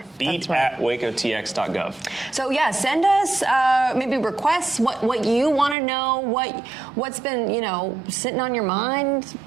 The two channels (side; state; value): left; drops out; at 5.8 s